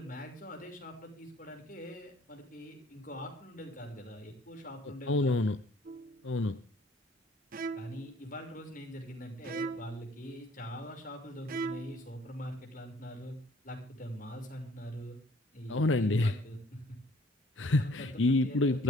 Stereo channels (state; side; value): normal; both; correlation 0.57